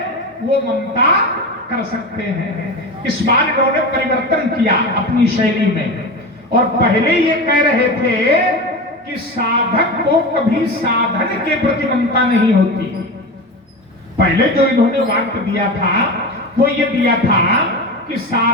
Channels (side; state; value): both; normal; correlation 0.25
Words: वो ममता कर सकते हैं। इस बार इन्होंने परिवर्तन किया अपनी शैली में, और पहले ये कह रहे थे कि साधक को कभी साधन के प्रति ममता नहीं होती। पहले जो इन्होंने वाक्य दिया था वो ये दिया था कि